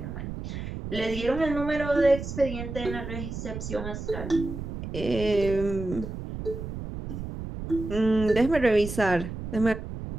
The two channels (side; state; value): right; noise; rumble, 7 dB below the sound